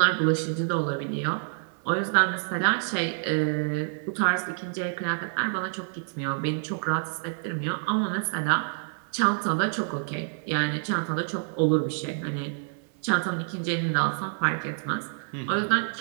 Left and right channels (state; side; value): silent; left; digital silence